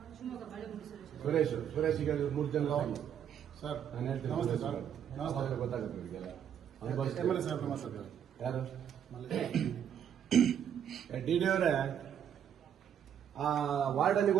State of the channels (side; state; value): left; quieter; 9.0 dB